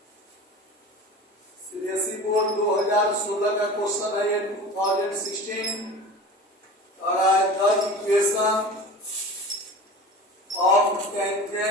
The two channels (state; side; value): normal; both; correlation 0.35